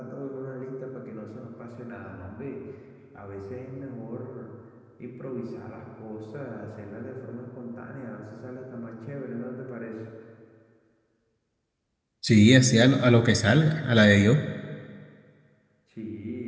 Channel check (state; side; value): identical; both; correlation 1.00